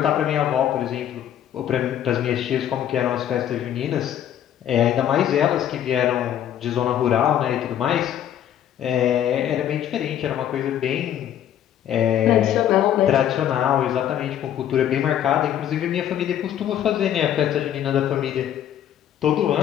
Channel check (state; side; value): quieter; right; 10.6 dB